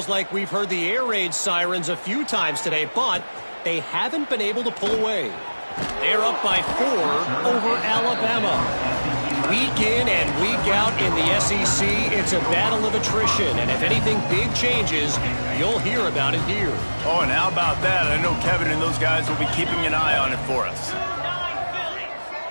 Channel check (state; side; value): inverted; both; correlation -1.00